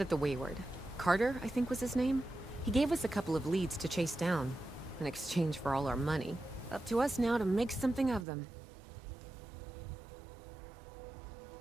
at the Wayward. Carter, I think was his name. He gave us a couple of leads to chase down, in exchange for all our money. Up to us now to make something of them.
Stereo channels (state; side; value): drops out; left; at 8.2 s